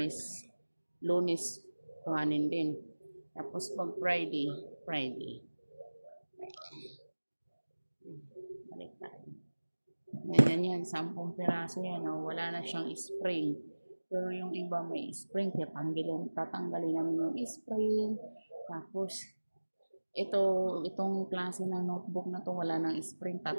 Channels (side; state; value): both; inverted; correlation -1.00